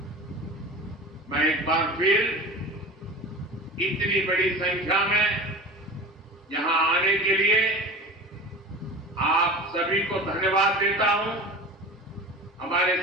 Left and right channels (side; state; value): both; normal; correlation 0.34